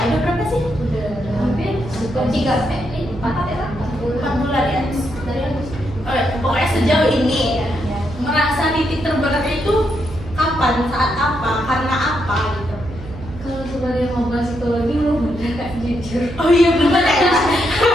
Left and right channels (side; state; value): right; noise; hum, 13 dB below the sound